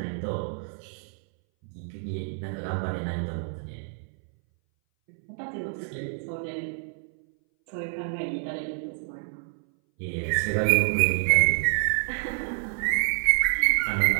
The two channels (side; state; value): left; silent; 59 dB below the other